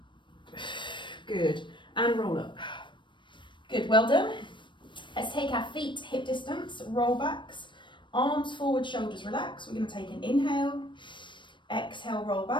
good, and roll up, good, well done. Let's take our feet hip distance, roll backs, arms forward, shoulders relax. We're going to take an inhale, exhale, roll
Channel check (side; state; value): right; late; 0.23 ms